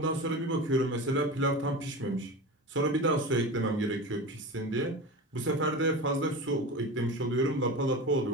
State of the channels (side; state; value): both; normal; correlation 0.28